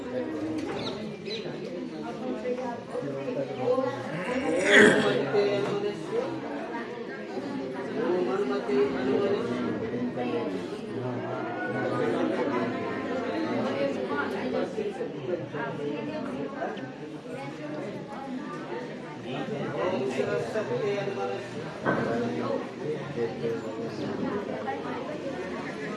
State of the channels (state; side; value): identical; both; correlation 1.00